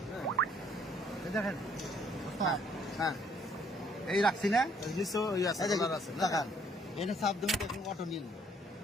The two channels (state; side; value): normal; both; correlation 0.64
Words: এই দেখেন, হ্যাঁ এই রাখছি না, নিচেও ওই আছে, এই দেখুন, কালার আছে না? দেখান এটা চাপ দেবেন, দেখুন অটো নীল।